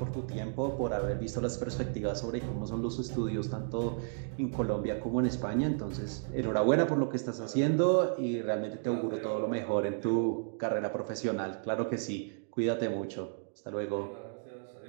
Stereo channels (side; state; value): left; silent; digital silence